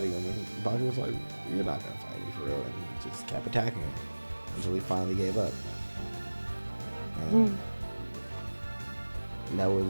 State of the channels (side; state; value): both; inverted; correlation -1.00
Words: him. And Baki was like, "You're not gonna fight me for real," and he just kept attacking him until he finally gave up. And that